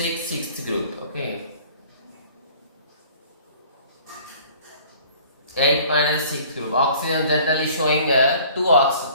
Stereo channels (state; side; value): inverted; both; correlation -0.51